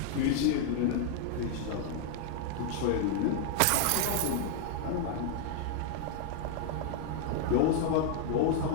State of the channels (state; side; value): different; both; correlation 0.00